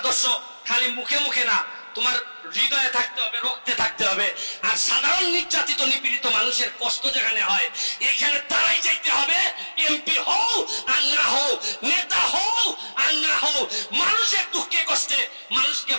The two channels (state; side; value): inverted; both; correlation -1.00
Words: খালি মুখে মুখে না, তোমার হৃদয়ে থাকতে হবে, রক্তে থাকতে হবে। আর সাধারণ নির্যাতিত নিপীড়িত মানুষের কষ্ট যেখানে হয়, এখানে তারাই যাইতে হবে। এমপি হও আর না হও, নেতা হও আর না হও, মানুষের দুঃখে কষ্টে মানুষকে